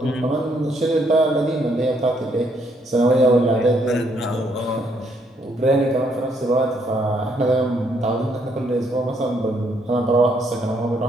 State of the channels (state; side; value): normal; both; correlation 0.71